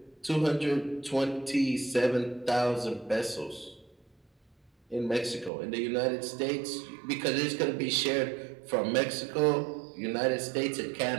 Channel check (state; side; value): drops out; left; at 5.5 s